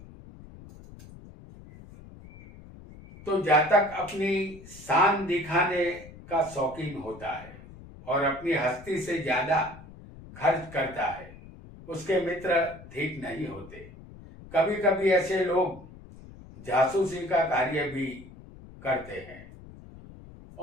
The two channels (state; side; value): noise; left; rumble, 18 dB below the sound